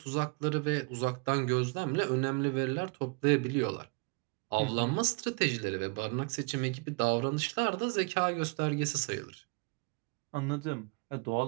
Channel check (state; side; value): quieter; left; 33.7 dB